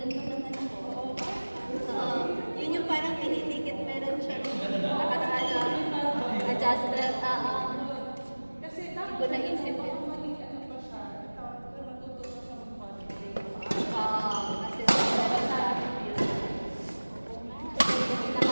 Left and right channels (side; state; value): both; inverted; correlation -1.00